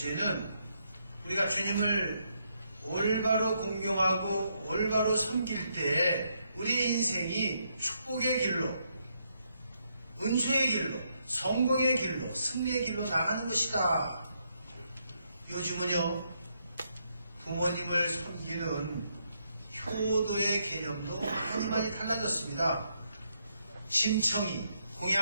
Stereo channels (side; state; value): both; inverted; correlation -0.77